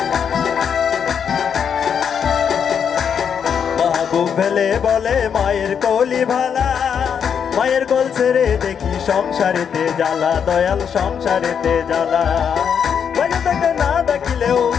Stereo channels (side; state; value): right; quieter; 7.5 dB